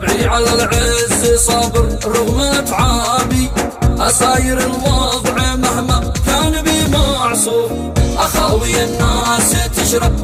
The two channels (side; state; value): both; identical; correlation 1.00